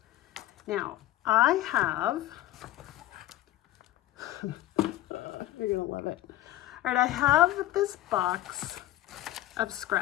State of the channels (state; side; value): quieter; right; 15.1 dB